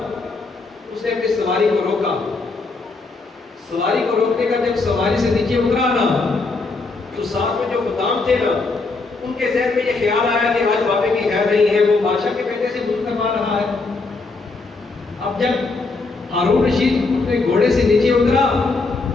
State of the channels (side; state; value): right; quieter; 3.8 dB